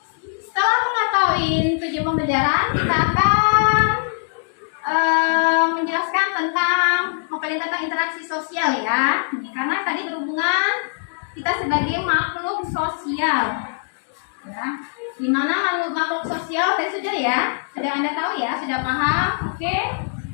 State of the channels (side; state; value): right; silent; digital silence